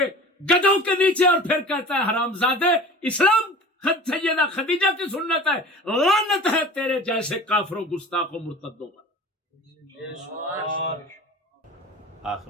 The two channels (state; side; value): normal; both; correlation 0.39